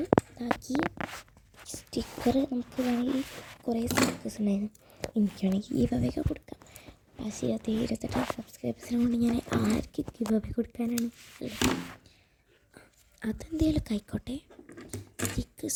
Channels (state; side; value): identical; both; correlation 1.00